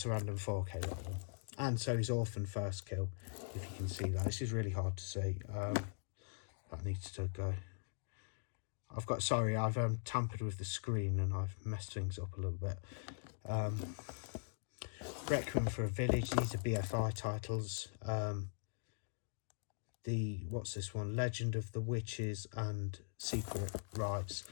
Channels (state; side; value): silent; right; digital silence